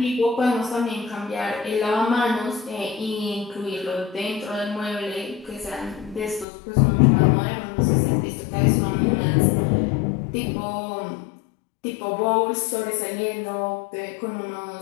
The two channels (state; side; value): drops out; right; at 6.5 s